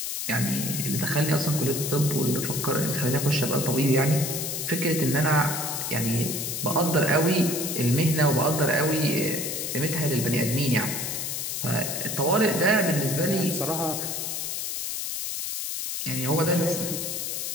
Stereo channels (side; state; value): left; noise; hiss, 3 dB below the sound